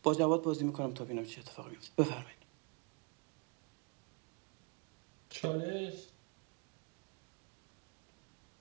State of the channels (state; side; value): quieter; left; 34.1 dB